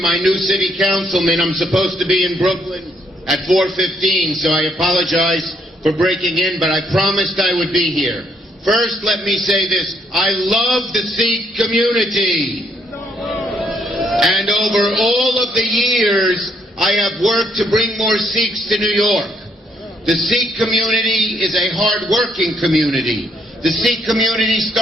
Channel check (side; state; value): both; normal; correlation 0.71